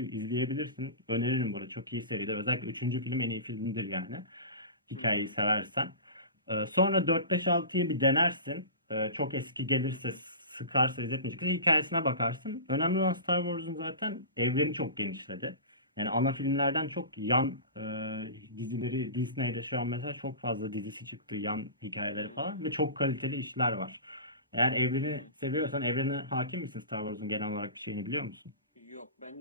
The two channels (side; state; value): both; inverted; correlation -0.32